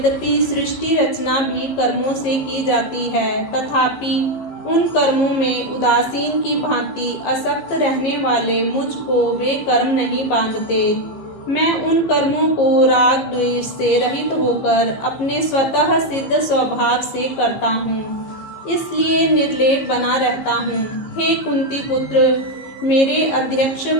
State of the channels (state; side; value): late; right; 15 ms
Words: सृष्टि रचना भी कर्मों से की जाती है, तथापि उन कर्मों में उदासीन की भांति असक्त रहने वाले मुझको वे कर्म नहीं बांधते। मैं उन कर्मों को राग द्वेष से रहित होकर अपने स्वतः सिद्ध स्वभाव से करता हूँ, इसलिए निर्लेप बना रहता हूँ। हे कुंती पुत्र, मेरे